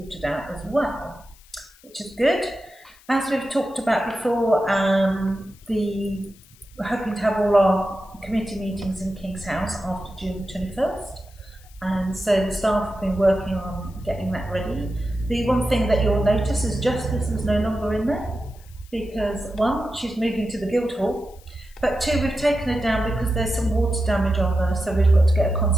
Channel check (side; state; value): left; noise; hiss, 26 dB below the sound